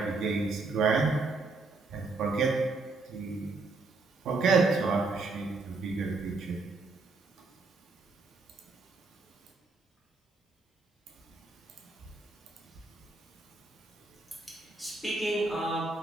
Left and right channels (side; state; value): left; quieter; 3.6 dB